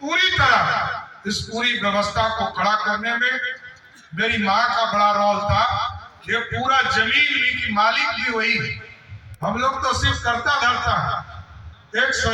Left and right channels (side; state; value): both; identical; correlation 1.00